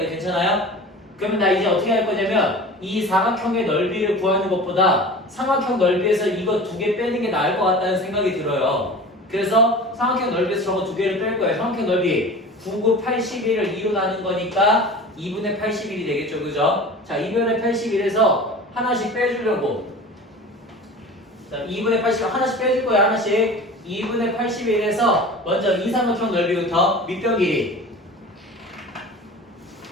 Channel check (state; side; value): normal; both; correlation 0.37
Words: 괜찮아요? 그러면 나 이제 어떻게 할 거냐면 이 사각형의 넓이를 구하는 것보다 삼각형 넓이에서 이거 두 개 빼는 게 나을 것 같다는 생각이 들어요. 그래서 삼각형 넓이에서 저거 두 개를 뺄 거예요. 삼각형 넓이 9, 9, 81을 2로 나눈 거니까 2분의 81이 되겠죠, 그죠? 자, 2분의 81에서 하나씩 빼주려고. 자, 2분의 81 하나씩 빼줄 거예요, 하나씩. 2분의 81에서 먼저 이 삼각형 넓이부터 밑변 길이